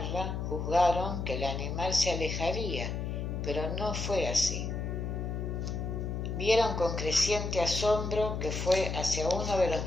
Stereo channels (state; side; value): noise; left; hum, 3 dB below the sound